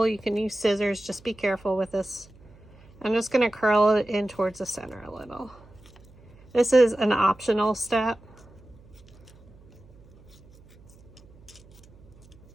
You can use scissors, just be careful with this. I'm just going to curl it in towards the center a little. This is an optional step.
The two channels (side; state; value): right; noise; hum, 25 dB below the sound